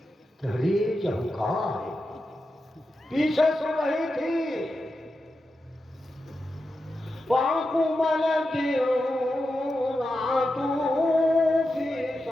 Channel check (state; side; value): normal; both; correlation 0.90